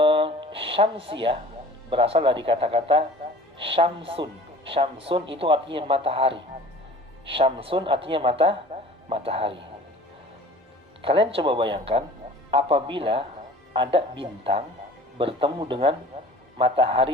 syamsiyah berasal dari kata-kata syamsun. Syamsun itu artinya matahari. Syamsun artinya matahari. Kalian coba bayangkan apabila ada bintang bertemu dengan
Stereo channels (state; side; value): normal; both; correlation 0.45